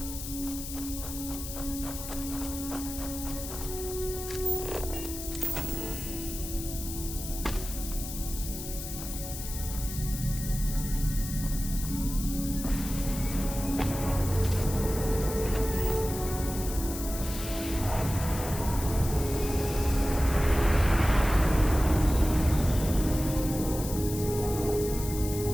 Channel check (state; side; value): noise; left; hiss, 9 dB below the sound